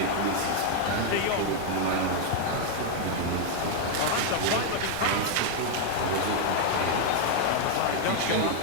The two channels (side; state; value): both; different; correlation 0.00